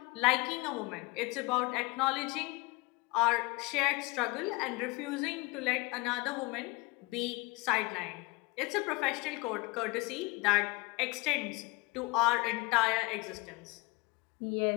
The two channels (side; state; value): right; quieter; 25.8 dB